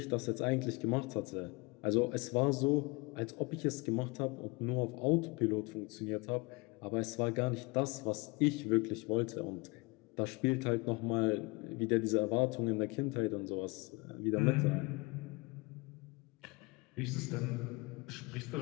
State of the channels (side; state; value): right; quieter; 26.9 dB